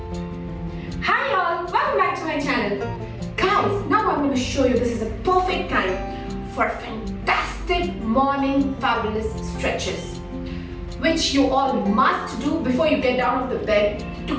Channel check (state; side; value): identical; both; correlation 1.00